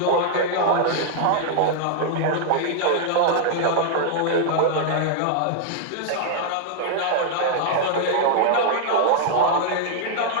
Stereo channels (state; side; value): different; both; correlation -0.01